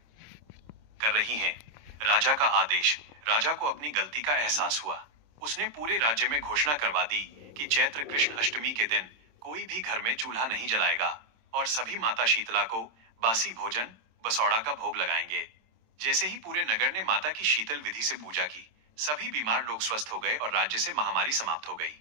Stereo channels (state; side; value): late; left; 26 ms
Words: कर रही हैं। राजा का आदेश। राजा को अपनी गलती का एहसास हुआ। उसने पूरे राज्य में घोषणा करवा दी कि चैत्र कृष्ण अष्टमी के दिन कोई भी घर में चूल्हा नहीं जलाएगा और सभी माता शीतला को बासी भोजन, बसौड़ा का भोग लगाएंगे। जैसे ही पूरे नगर ने माता की शीतल विधि से पूजा की, सभी बीमार लोग स्वस्थ हो गए और राज्य से महामारी समाप्त हो